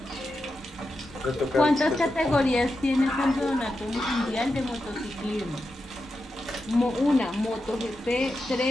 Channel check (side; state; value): both; normal; correlation 0.89